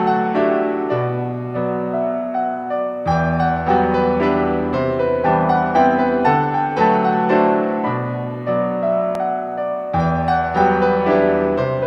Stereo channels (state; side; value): identical; both; correlation 1.00